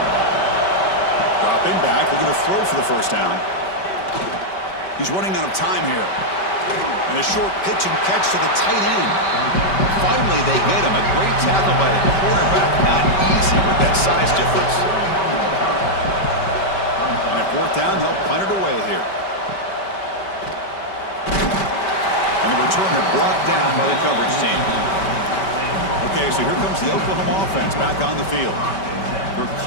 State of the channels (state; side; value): late; right; 5.2 ms